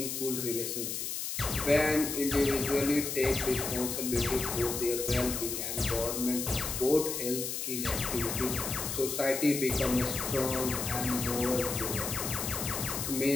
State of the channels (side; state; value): left; noise; hiss, 3 dB below the sound